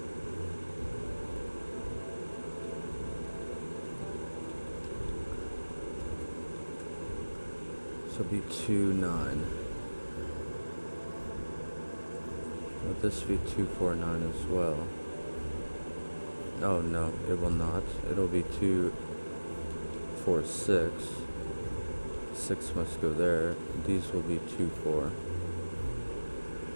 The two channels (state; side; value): inverted; both; correlation -1.00